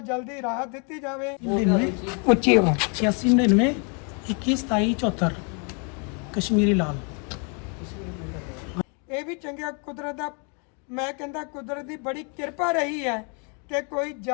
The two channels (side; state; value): right; quieter; 37.3 dB